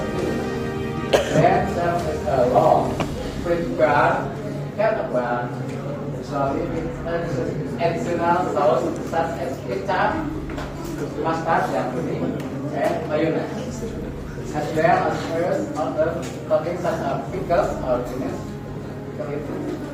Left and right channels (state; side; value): identical; both; correlation 1.00